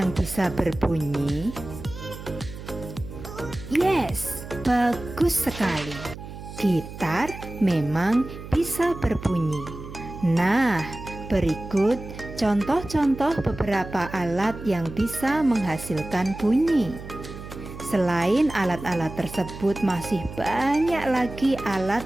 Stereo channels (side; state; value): right; noise; hum, 12 dB below the sound